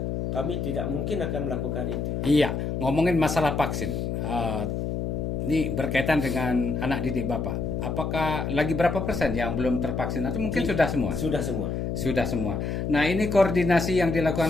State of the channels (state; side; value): noise; left; hum, 2 dB below the sound